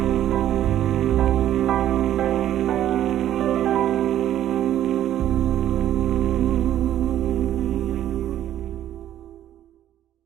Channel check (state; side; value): quieter; left; 11.8 dB